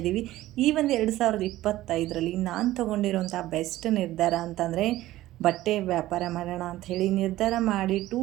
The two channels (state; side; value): quieter; left; 15.7 dB